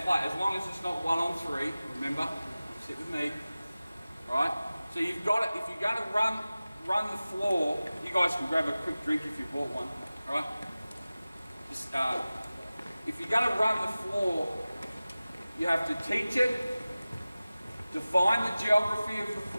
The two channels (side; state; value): both; inverted; correlation -0.97